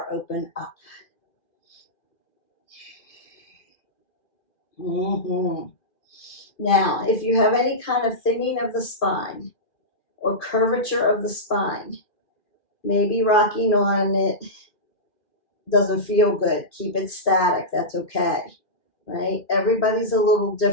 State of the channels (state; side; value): late; right; 2.5 ms